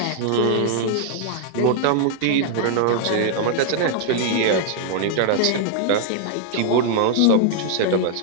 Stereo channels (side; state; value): both; different; correlation -0.01